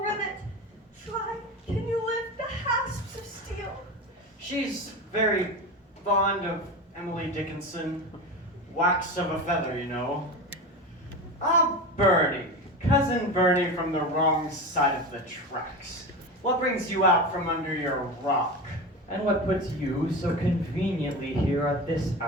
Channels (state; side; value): normal; both; correlation 0.25